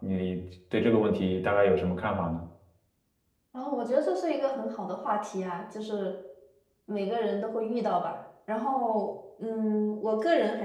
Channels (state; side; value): identical; both; correlation 1.00